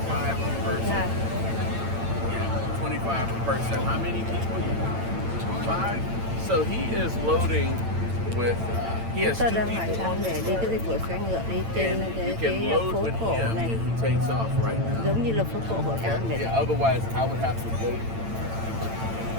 per person. Yeah. Yeah, 25 a person. How many people? 5. So he is loading with. He has 2 Tôi đang hỏi people thăm on để this đi cái boat, dịch vụ xe ngựa đi trên and you cái can load phố with cổ him này, and he takes off right now. giống như là phố cổ Hội An vậy. Yeah, otherwise I would have to wait.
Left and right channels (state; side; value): late; left; 8.9 ms